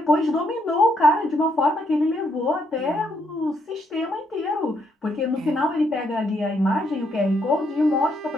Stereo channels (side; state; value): both; normal; correlation 0.75